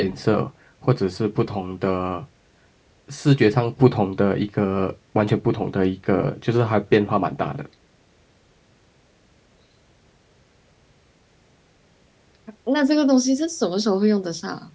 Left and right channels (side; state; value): both; identical; correlation 1.00